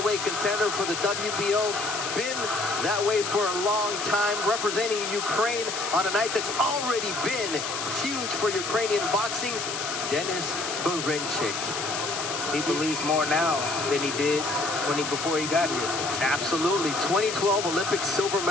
contender for the WBO. Been that way for a long time, representing Ukraine on a night that's already been huge for Ukrainian boxing. Denis Berinchik. He believes more now than he did before he got here. Absolutely. 2012 Olympic silver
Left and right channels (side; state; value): left; noise; hiss, 4 dB below the sound